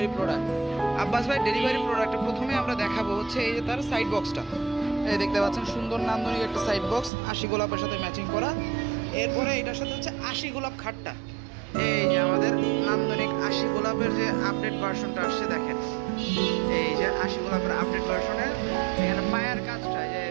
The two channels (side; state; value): left; drops out; at 7.1 s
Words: প্রোডাক্ট। আব্বাস ভাইয়ের ডেলিভারি প্রোডাক্টে প্রথমে আমরা দেখাবো হচ্ছে এই যে তার সাইড বক্সটা। এই দেখতে পাচ্ছেন সুন্দর নান্দনিক একটা সাইড বক্স, 80 গোলাপের সাথে ম্যাচিং করা। এরপরে এটার সাথে হচ্ছে 80 গোলাপ খাটটা। এই যে আমাদের নান্দনিক 80 গোলাপের যে আপডেট ভার্সনটা আসছে দেখেন। এই যে 80 গোলাপের আপডেট ভার্সনের এখানে পায়ার কাজটা, যে